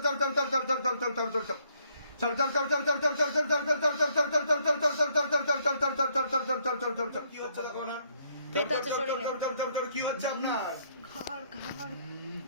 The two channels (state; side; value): inverted; both; correlation -0.69